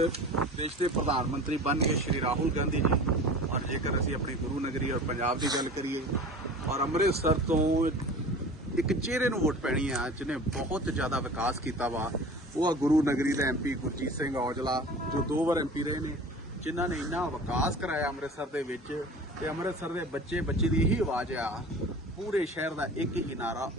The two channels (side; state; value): both; normal; correlation 0.39